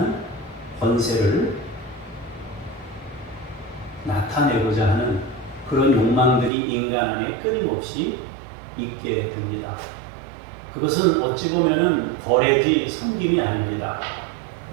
권세를 나타내고자 하는 그런 욕망들이 인간 안에 끊임없이 있게 됩니다. 그것은 어찌 보면은 거래지 섬김이 아닙니다.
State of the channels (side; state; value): left; drops out; at 6.5 s